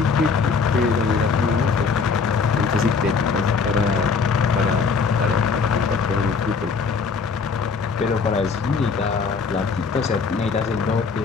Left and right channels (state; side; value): quieter; right; 5.2 dB